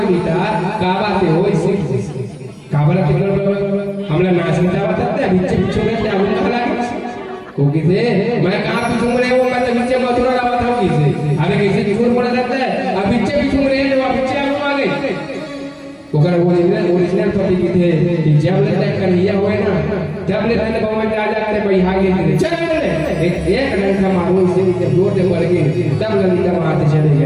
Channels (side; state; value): both; identical; correlation 1.00